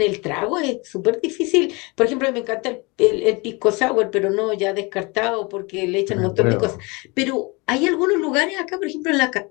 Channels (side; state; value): right; quieter; 27.2 dB